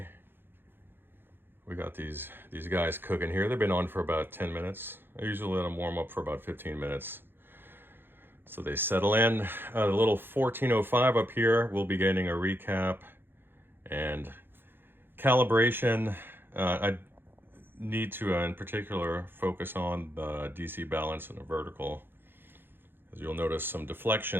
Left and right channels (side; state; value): left; late; 0.10 ms